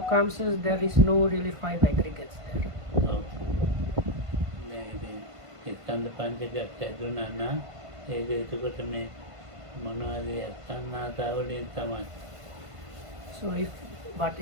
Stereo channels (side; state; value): left; late; 1.5 ms